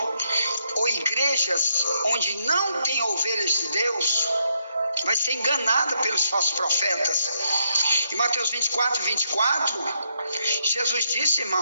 ou igrejas onde não tem ovelhas de Deus, vai ser enganada pelos falsos profetas. Em Mateus 24, Jesus disse,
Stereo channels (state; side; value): inverted; both; correlation -0.78